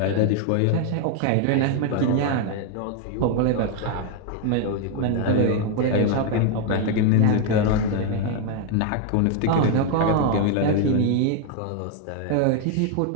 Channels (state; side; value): different; both; correlation 0.01